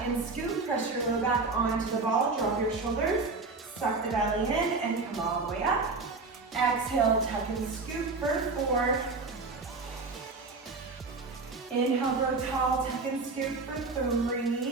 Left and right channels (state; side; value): quieter; left; 3.9 dB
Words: and scoop, press your low back onto the ball, drop your shoulders, suck the belly in and come all the way up. Exhale, tuck and scoop for 4. Inhale, grow tall, tuck and scoop for